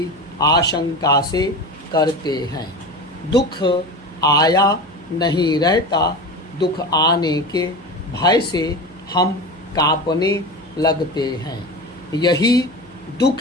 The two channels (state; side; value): noise; right; hum, 26 dB below the sound